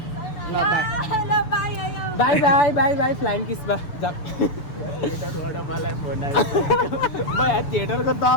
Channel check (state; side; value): late; right; 6.9 ms